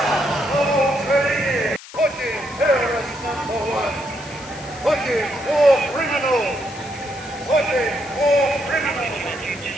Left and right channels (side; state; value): left; noise; hiss, 17 dB below the sound